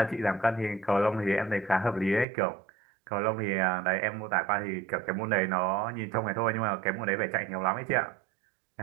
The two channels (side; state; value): left; drops out; at 2.2 s